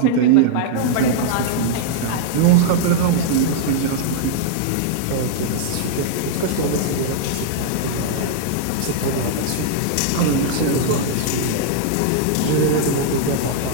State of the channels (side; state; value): both; different; correlation -0.01